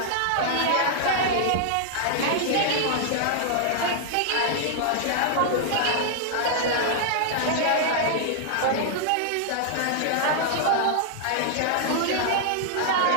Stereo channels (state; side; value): different; both; correlation -0.01